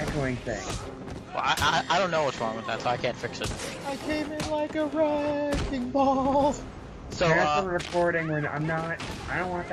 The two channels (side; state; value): both; identical; correlation 1.00